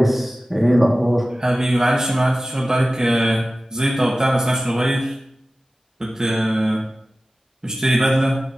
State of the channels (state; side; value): normal; both; correlation 0.96